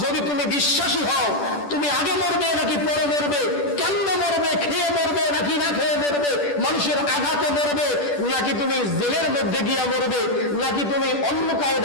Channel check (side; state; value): right; late; 10 ms